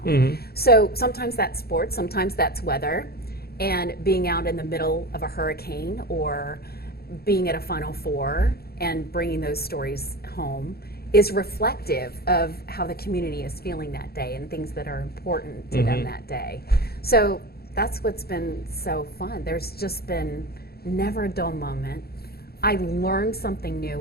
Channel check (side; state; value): right; late; 0.45 ms